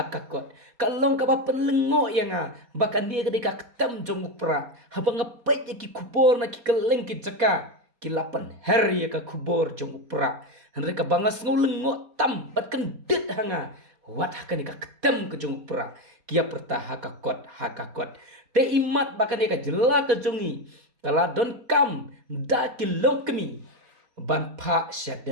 kalong ka ba penlengo ya nga bakan dia ke deka ketem jong pra habanga pe ki kubor na ki keleng ki jaka kilapan her ya ka kubor jong pra henreka bangas ngulengo tam bat kendit hanga wat hakan ka ketem ke jong pra kia perta hakakot te imat bakan dia ka jela ke jongi kala don kam da kilong kemi ban pa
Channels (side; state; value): left; late; 4.2 ms